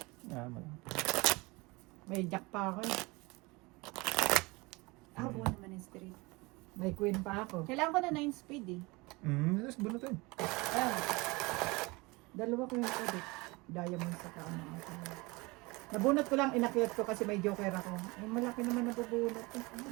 May jack pa ako eh. Ako buo naman yung straight. May queen pa ako. Kailangan ko na 9 speed eh. Tapos bunutin. Ayan. Dalawa ko yung ulit. Diamond sa kaano. Nabunot ko lang, inakyat ko kasi may joker ako. Ay, malaki naman nabubunot.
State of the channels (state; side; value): quieter; left; 24.5 dB